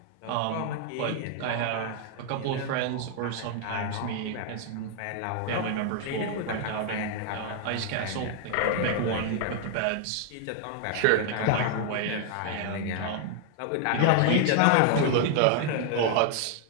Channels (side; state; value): both; different; correlation 0.00